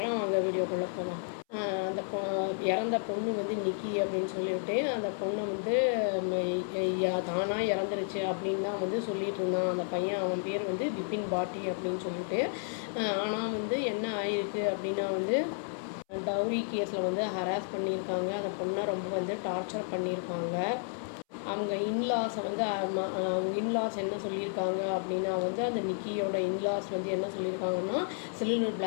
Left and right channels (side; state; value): right; silent; 57 dB below the other